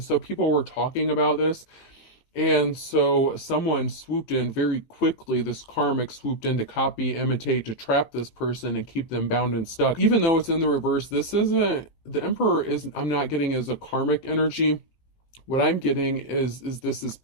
so people were talking about this. And so someone swooped in very quickly. This karmic swooped in to copy, imitate, to trap this person and keep them bound and stuck. Even though it's in the reverse, this isn't, the emperor isn't, I'm not getting as a karmic energy. What I'm getting is this is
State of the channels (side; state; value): right; late; 18 ms